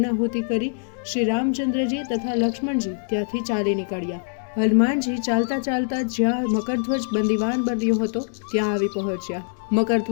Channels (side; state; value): right; silent; digital silence